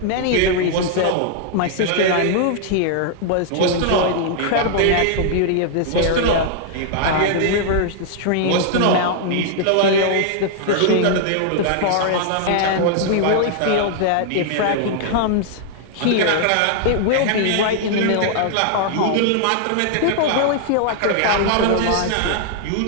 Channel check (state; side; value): different; both; correlation -0.01